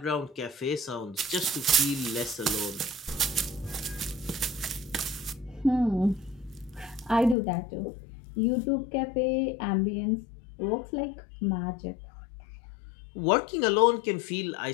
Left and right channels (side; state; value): right; drops out; at 7.4 s